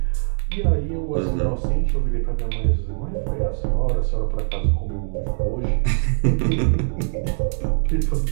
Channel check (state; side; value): silent; left; digital silence